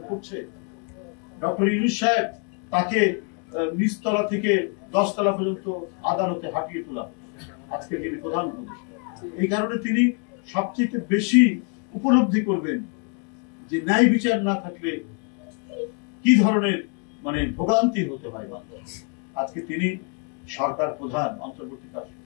করছে। ডক্টর ইউনূস সাহেব তাকে নিচতলা থেকে 10 তলা পর্যন্ত আদালতে হাঁটিয়ে তোলা, আজকে যিনি প্রধান উপদেষ্টা। এই কারণে তিনি সবচেয়ে বেশি উপলব্ধি করবেন যে ন্যায় বিচার না থাকলে কি ধরনের ভোগান্তি হতে হয়। আজকে তিনি সরকার প্রধান,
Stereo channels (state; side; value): quieter; right; 38.5 dB